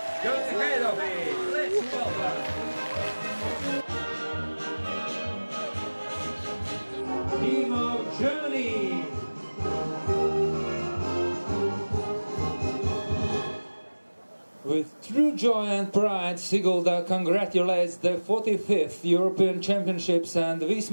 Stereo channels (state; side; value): inverted; both; correlation -1.00